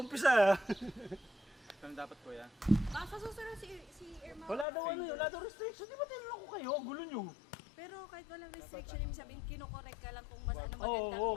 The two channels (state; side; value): drops out; right; at 4.7 s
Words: Ano dapat, kuya? Baka sa susunod si Irma. Wala daw restriction. Di ba tinanong ko kayo? Gulo nyo. Pero kahit walang restriction, ibig sabihin, kinokorek ka lang kung mas ano Oo,